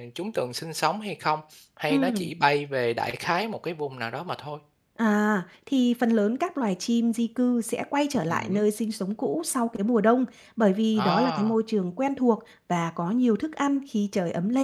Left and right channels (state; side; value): identical; both; correlation 1.00